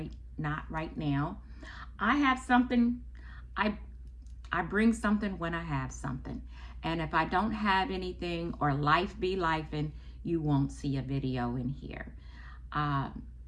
not right now. I have something, I bring something when I have something. And if I don't have anything or life be lifing, you won't see a video in here.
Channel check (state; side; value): identical; both; correlation 1.00